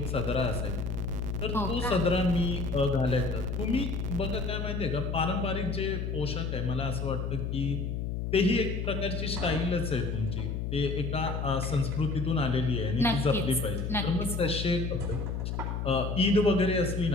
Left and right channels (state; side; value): noise; left; hum, 2 dB below the sound